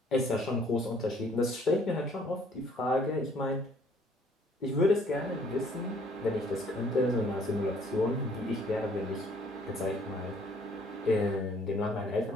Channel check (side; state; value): both; normal; correlation 0.61